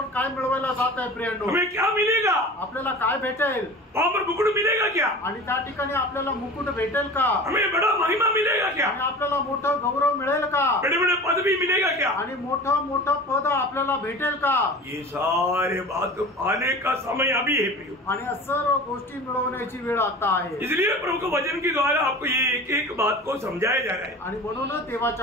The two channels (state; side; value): normal; both; correlation 0.37